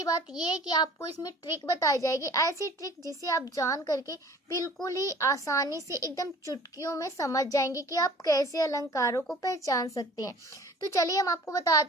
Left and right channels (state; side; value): normal; both; correlation 0.48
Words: बात ये है कि आपको इसमें ट्रिक बताई जाएगी, ऐसी ट्रिक जिसे आप जान करके बिल्कुल ही आसानी से एकदम चुटकियों में समझ जाएंगे कि आप कैसे अलंकारों को पहचान सकते हैं। तो चलिए हम आपको